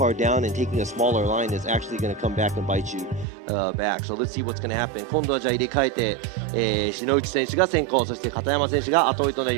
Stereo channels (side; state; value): left; drops out; at 3.2 s